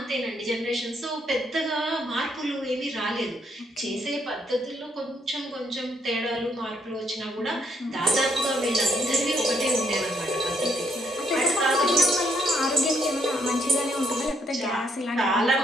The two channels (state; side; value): normal; both; correlation 0.73